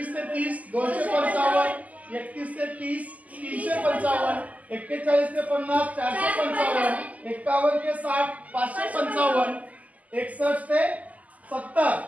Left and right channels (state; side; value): late; left; 0.075 ms